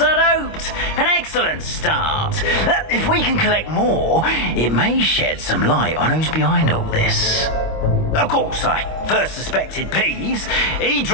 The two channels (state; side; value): late; right; 25 ms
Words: I'd hoped. An excellent start. If we can collect more, it may shed some light on who's behind all this. Of course, I first suspected Peeves. He